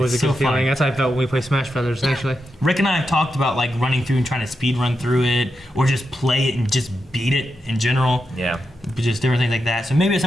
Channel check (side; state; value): both; normal; correlation 0.87